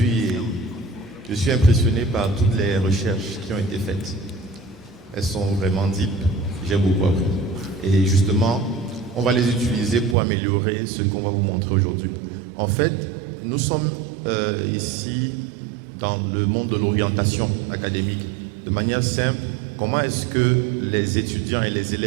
et je suis impressionné par toutes les recherches qui ont été faites. Elles sont vraiment deep, j'ai beaucoup appris. Et justement, on va les utiliser pour améliorer ce qu'on va vous montrer aujourd'hui. En fait, nous sommes ici dans le monde de l'orientation académique. De manière simple, comment est-ce que les étudiants et les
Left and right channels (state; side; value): drops out; left; at 10.2 s